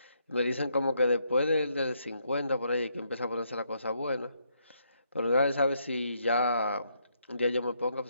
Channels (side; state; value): both; inverted; correlation -0.75